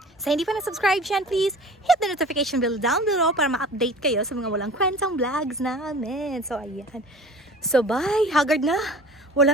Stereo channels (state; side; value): normal; both; correlation 0.42